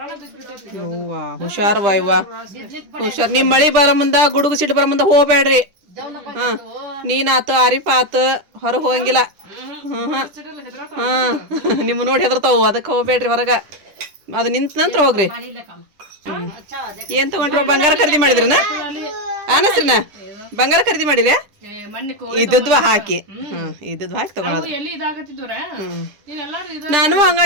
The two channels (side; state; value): left; late; 10 ms